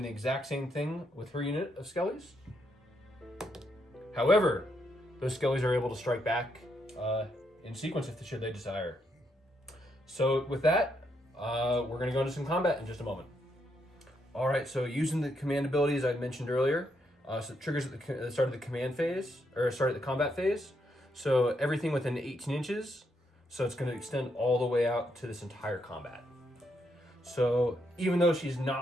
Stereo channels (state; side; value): normal; both; correlation 0.78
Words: the exact same thing with her unit of skellies. However, those skellies are able to strike back in sequence if should they desire. So with that, we're going to go into some combat in just a moment. All right, so using the command abilities I mentioned earlier, so it triggers at the start of the command phase, or start at the combat phase. So everything within 18 inches, so it's going to extend all the way out to this entire combat. So even though she's